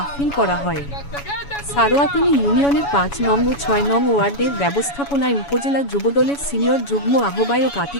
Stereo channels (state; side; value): late; right; 7.1 ms